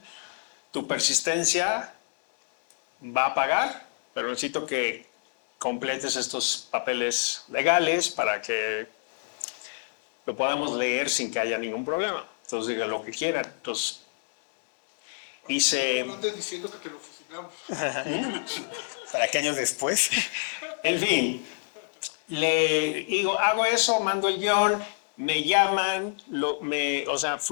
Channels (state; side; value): silent; right; 60 dB below the other